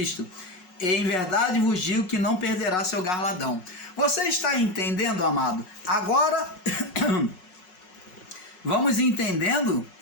em verdade vos digo que não perderá seu galardão. Você está entendendo, amado? Agora, vamos entendendo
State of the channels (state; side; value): late; right; 5.5 ms